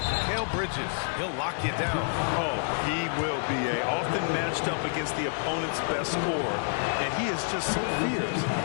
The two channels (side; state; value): right; silent; digital silence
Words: Bridges. He'll lock you down. Oh, he will be often matched up against the opponent's best scorer. And he is just so fierce.